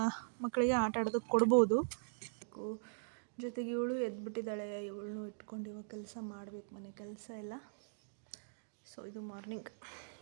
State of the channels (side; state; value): left; silent; digital silence